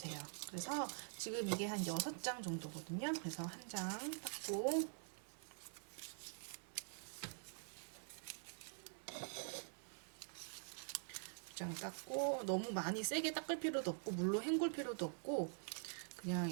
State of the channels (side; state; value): left; silent; digital silence